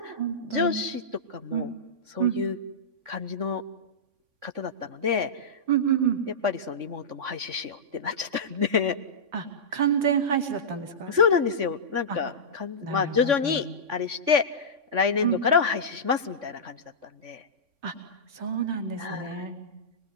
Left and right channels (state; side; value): late; left; 3.5 ms